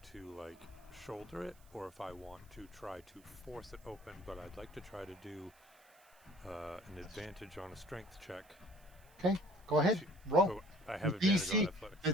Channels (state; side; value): noise; right; hiss, 28 dB below the sound